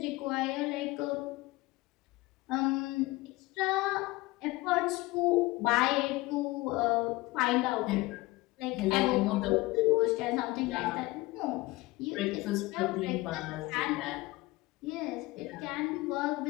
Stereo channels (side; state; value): right; quieter; 20.8 dB